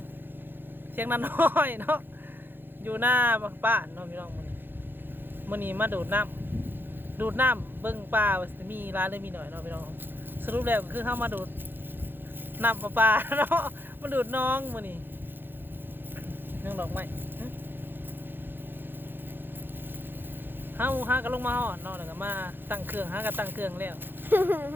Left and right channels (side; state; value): left; late; 0.099 ms